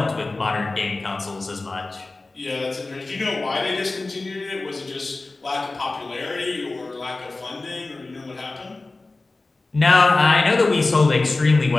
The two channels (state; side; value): quieter; right; 3.3 dB